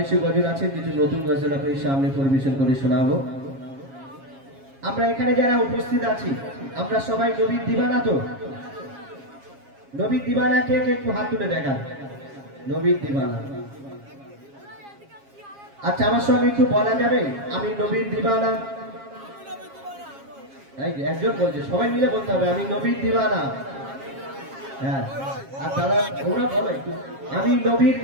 গজল আছে, কিছু নতুন গজল আপনার সামনে পরিবেশন করে শোনাবো। আমরা এখানে যারা উপস্থিত আছি, আমরা সবাই নবীর দিবানা। তো নবীর দিবানা কে কে একটু হাত তুলে দেখান। নবীর দিবানা। আচ্ছা, আমার সঙ্গে একটু বলা যাবে আমি নবীর দিবানা? একজন বলছে, সবাই মিলে বলতে হবে আমি নবীর দিবানা। হ্যাঁ, আর তারা ওরা বলো একটু, আমি নবীর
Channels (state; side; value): late; left; 7.4 ms